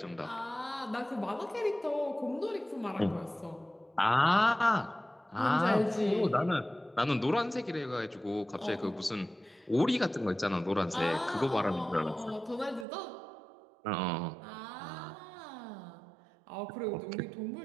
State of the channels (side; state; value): left; drops out; at 12.9 s